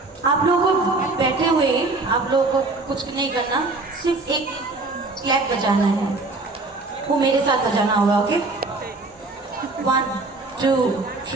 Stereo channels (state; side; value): quieter; left; 3.3 dB